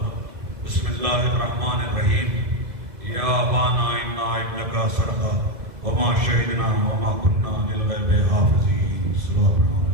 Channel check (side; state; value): left; late; 1.7 ms